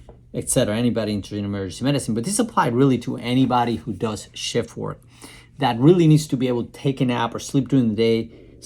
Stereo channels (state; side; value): identical; both; correlation 1.00